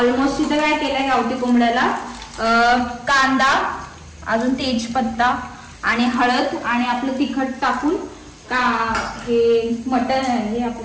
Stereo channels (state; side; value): identical; both; correlation 1.00